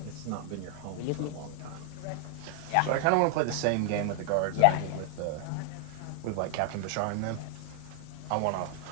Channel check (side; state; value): both; different; correlation 0.00